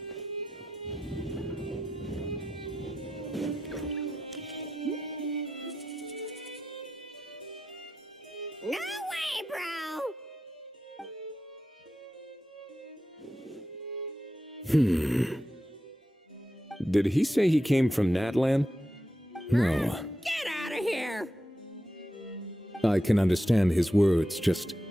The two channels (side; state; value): both; normal; correlation 0.89